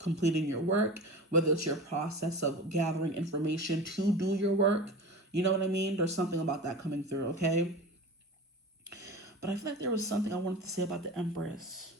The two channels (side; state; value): both; normal; correlation 0.32